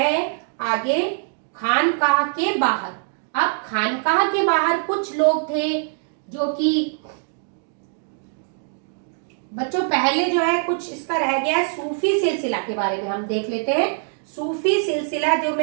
आगे खानकाह के बाहर। अब खानकाह के बाहर कुछ लोग थे जो कि बच्चों पहले जो है कुछ इसका रह गया, सूफी सिलसिला के बारे में हम देख लेते हैं। सूफी सिलसिला जो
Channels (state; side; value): silent; left; 64 dB below the other